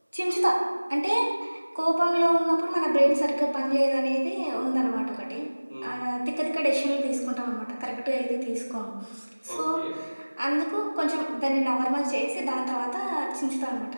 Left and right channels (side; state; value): both; inverted; correlation -1.00